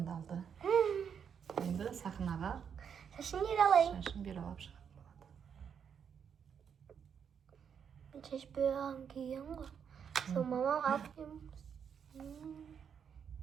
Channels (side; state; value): left; quieter; 7.5 dB